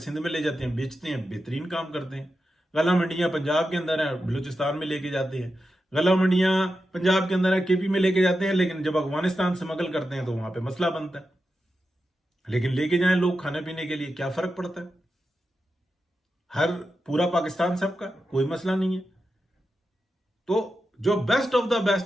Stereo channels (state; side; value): normal; both; correlation 0.90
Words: में ले जाते हैं, बेचते हैं, बेहतरीन काम करते हैं। गला मंडियां पंजाब के अंदर है, बलूचिस्तान में लेके जाते हैं। गला मंडियां पंजाब के अंदर है, केपी में लेके जाते हैं, लेकिन जब अफगानिस्तान से स्मगल करते हैं तो वहां पे मसला बनता है। लेकिन लेके जाएं लोग खाने पीने के लिए, क्या फर्क पड़ता है? हर पूरा पाकिस्तान सबका, कोई मसला नहीं है। तो जो बेस्ट ऑफ द